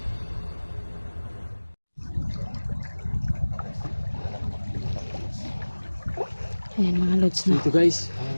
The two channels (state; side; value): inverted; both; correlation -1.00